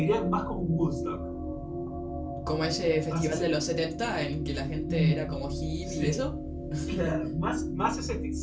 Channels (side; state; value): both; identical; correlation 1.00